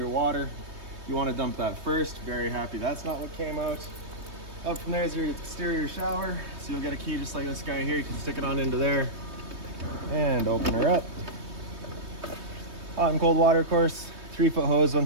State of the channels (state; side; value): late; left; 3.2 ms